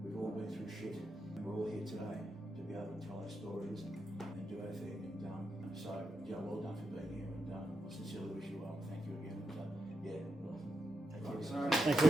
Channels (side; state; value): both; normal; correlation 0.85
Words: We've we're all here today to be able to tell our stories and do our thing. And so, yeah, well done for being here, and I sincerely wish you well. Thank you again. And, yeah, well, Thank you